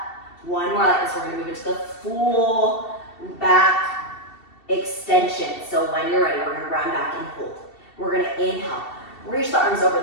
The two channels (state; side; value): late; right; 2.7 ms